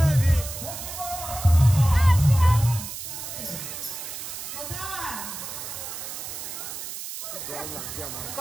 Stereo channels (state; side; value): noise; right; hiss, 8 dB below the sound